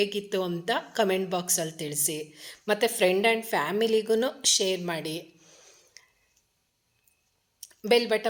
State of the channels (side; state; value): both; identical; correlation 1.00